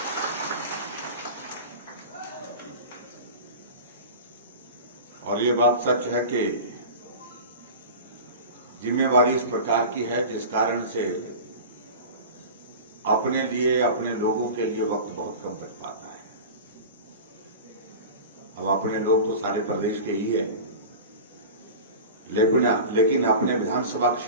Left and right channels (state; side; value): inverted; both; correlation -0.33